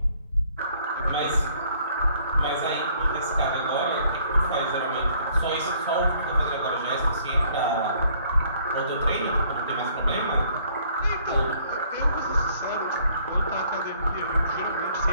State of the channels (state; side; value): inverted; both; correlation -0.61